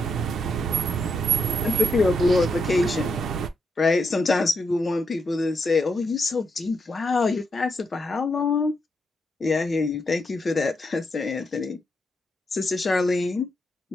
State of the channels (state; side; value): normal; both; correlation 0.80